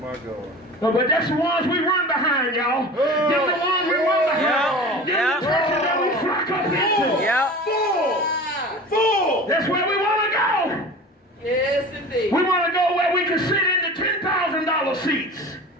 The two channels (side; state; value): both; normal; correlation 0.37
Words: God. No, but that's the ones we run behind, y'all. Them the ones we run behind. Them the churches that we flock up into. Full. That's where we want to go. Yes, indeed. We want to go where we can sit in the $10,000 seats.